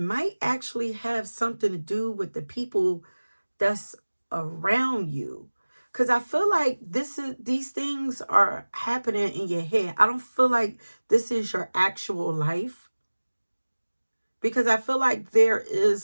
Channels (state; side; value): inverted; both; correlation -1.00